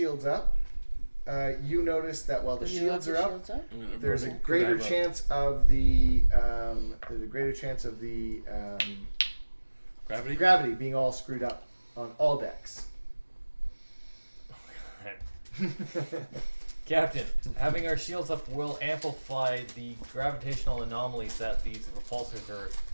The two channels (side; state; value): both; inverted; correlation -1.00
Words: up, you notice that while the Do you have shields the are up, shields up? I'm gonna there's a roll- greater I have a chance of the gravity. gravity being all screwed up on all decks. Captain, having our shields up will amplify the gravitational anomalies that these repulsors are